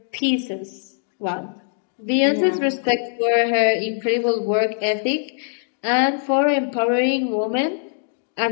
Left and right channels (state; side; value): silent; right; digital silence